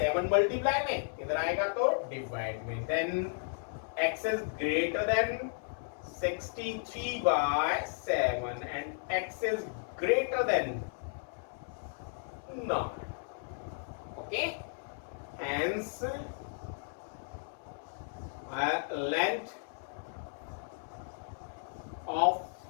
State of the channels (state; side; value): silent; right; 55 dB below the other